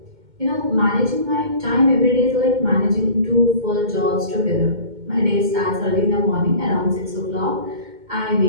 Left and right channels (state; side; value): late; left; 2.2 ms